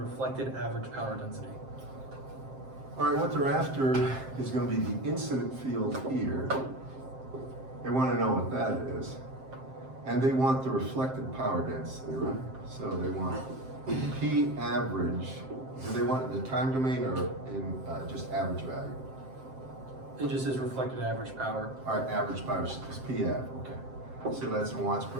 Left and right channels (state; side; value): late; left; 7.6 ms